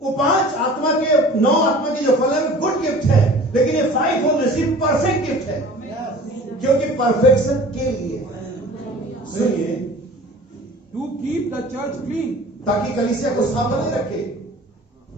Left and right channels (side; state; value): both; normal; correlation 0.44